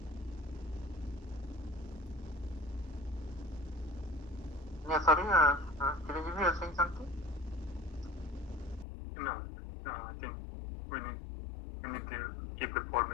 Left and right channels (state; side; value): drops out; right; at 8.8 s